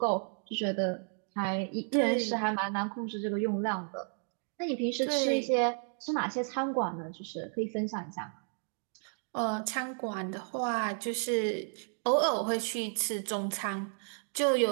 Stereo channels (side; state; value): left; silent; 56 dB below the other